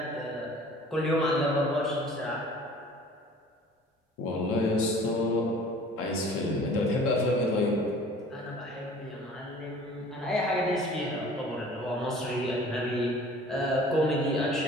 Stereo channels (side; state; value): both; normal; correlation 0.48